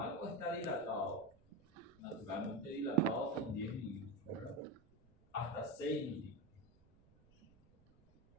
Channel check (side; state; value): right; noise; rumble, 29 dB below the sound